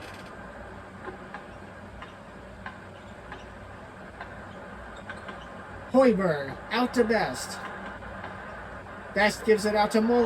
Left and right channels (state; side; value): identical; both; correlation 1.00